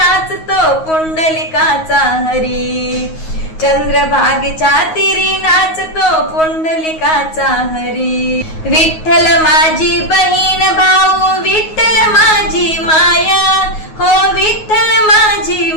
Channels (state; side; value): late; right; 9.4 ms